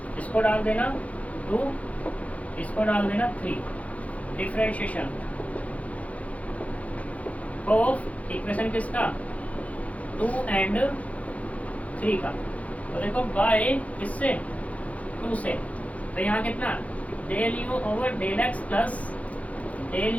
इसको डाल देना 2, इसको डाल देना 3, डिफरेंशिएशन ऑफ इक्वेशन किसका 2 एंड 3 का। तो देखो बाय किससे 2 से, तो यहाँ कितना del u over del x plus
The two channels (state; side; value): late; right; 0.067 ms